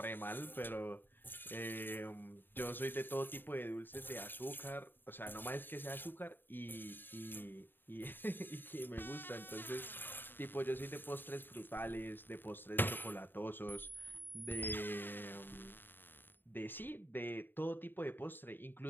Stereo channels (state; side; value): late; right; 0.095 ms